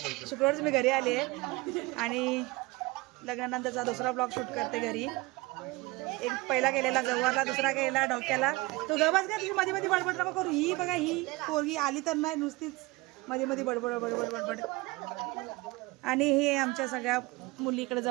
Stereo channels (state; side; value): quieter; left; 22.8 dB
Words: शुक्रवारच मी घरी आली आहे. आणि लग्नानंतरचा दुसरा ब्लॉग शूट करते घरी. एक पहिला केलेला गवारला, दुसरा केलेला डोक्याला. तो गवाच का तुझी मध्ये मध्ये बडबड नको करू. ही बघा, ही पोरगी आली तर नाही, नुसतीच मध्ये मध्ये बडबड बडबड बडबड. आणि हे आमच्या सगळ्या मुली इकडे